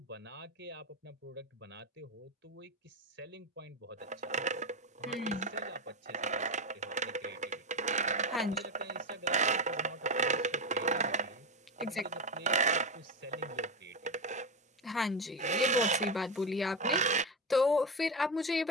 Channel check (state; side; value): normal; both; correlation 0.16